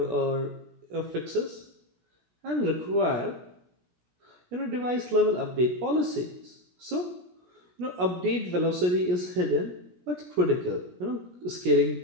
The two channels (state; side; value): late; left; 17 ms